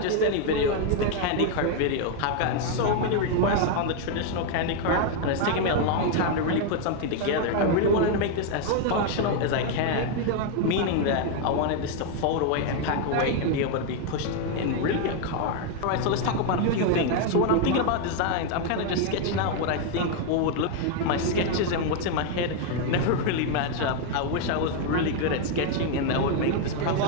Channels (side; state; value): both; different; correlation 0.01